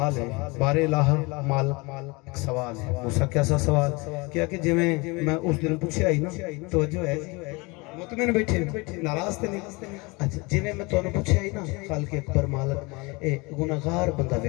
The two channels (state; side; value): quieter; right; 26.4 dB